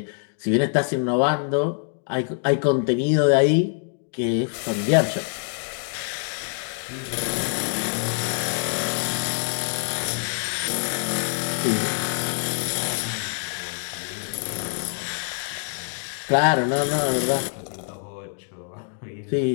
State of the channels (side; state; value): right; silent; 58 dB below the other